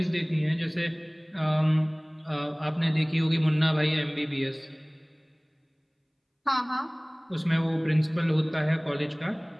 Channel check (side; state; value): both; identical; correlation 1.00